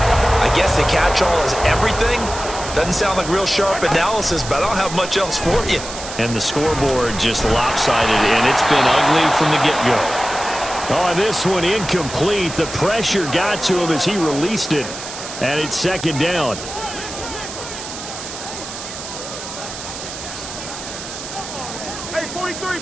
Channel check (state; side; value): noise; right; hiss, 10 dB below the sound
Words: I guess the catch-all is everything. Doesn't sound like real sharp analysis, but I don't have much else for you. And the scoreboard just lopsided, and it's been ugly from the get-go. On this one, incomplete. The pressure got to him as he released it, and it's 2nd down. Hey, 43,